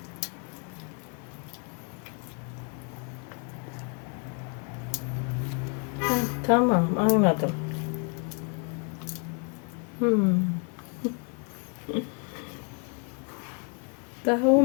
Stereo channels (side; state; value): right; quieter; 37.1 dB